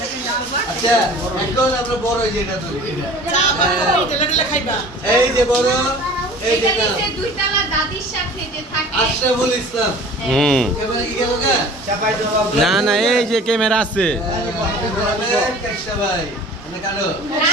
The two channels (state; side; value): normal; both; correlation 0.44